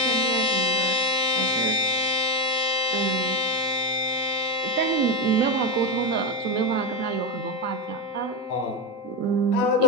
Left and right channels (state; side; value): normal; both; correlation 0.12